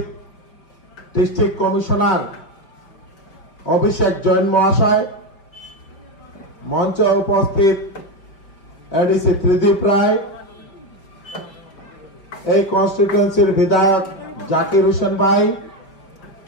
ডিস্ট্রিক্ট কমিশনার অভিষেক জৈন মহাশয়, মঞ্চে উপস্থিত এডিসি ত্রিদীপ রায়, এই কনস্টিটিউয়েন্সির বিধায়ক জাকির হোসেন ভাই,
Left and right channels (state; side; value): late; right; 5.6 ms